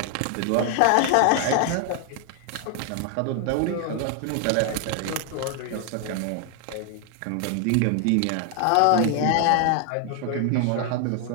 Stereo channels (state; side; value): different; both; correlation 0.00